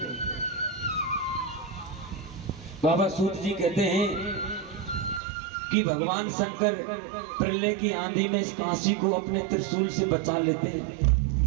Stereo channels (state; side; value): drops out; left; at 5.2 s